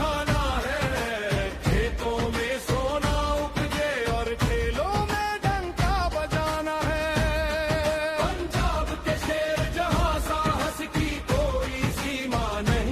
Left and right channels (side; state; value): both; identical; correlation 1.00